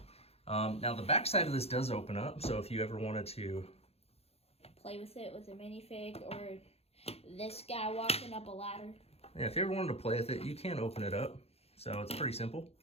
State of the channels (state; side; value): late; right; 0.29 ms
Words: Now, the back side of this does open up, so if you ever wanted to play with it with a minifig, or this guy walking up a ladder. Yeah, if you ever wanted to play with it, you can open it up. So it's pretty simple.